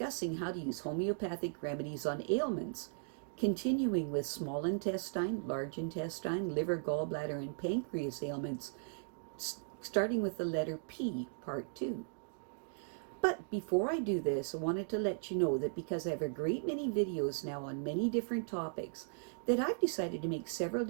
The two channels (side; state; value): left; silent; digital silence